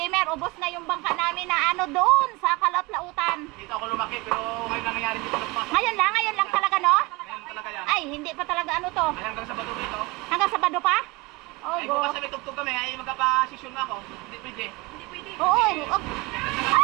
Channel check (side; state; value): left; quieter; 24.3 dB